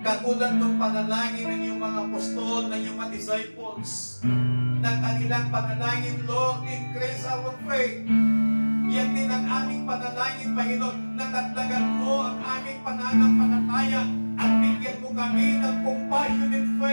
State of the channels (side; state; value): both; inverted; correlation -1.00